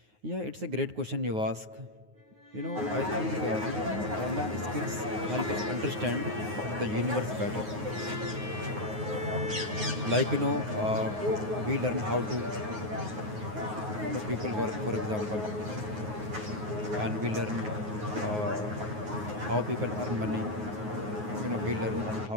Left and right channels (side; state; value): left; late; 9.5 ms